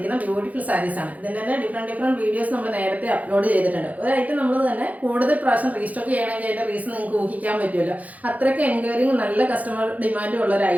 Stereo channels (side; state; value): left; late; 0.075 ms